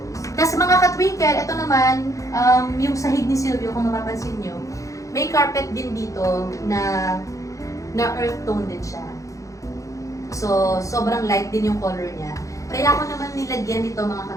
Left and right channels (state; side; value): late; right; 0.16 ms